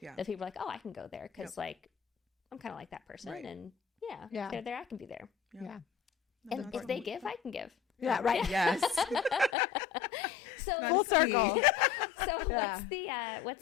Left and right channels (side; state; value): right; drops out; at 9.6 s